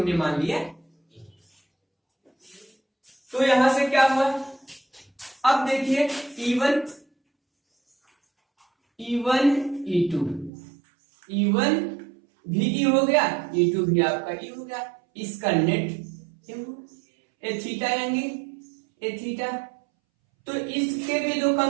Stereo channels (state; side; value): drops out; left; at 10.5 s